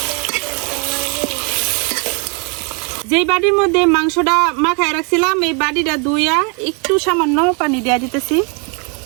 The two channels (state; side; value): quieter; left; 34.9 dB